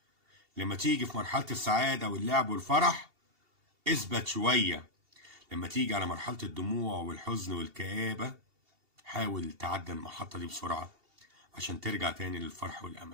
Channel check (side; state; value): left; late; 2.7 ms